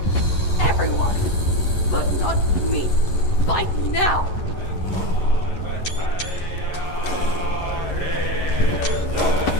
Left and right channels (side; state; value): right; late; 11 ms